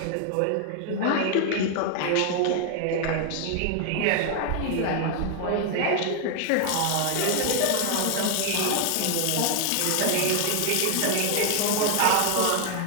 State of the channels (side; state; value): both; different; correlation 0.00